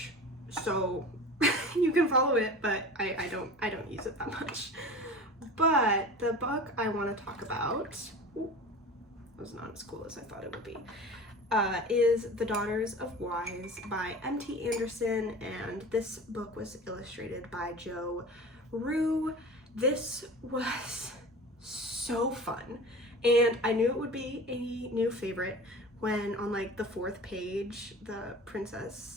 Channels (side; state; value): both; normal; correlation 0.36